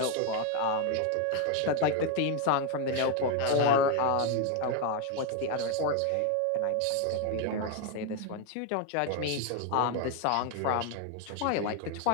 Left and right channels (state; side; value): different; both; correlation 0.01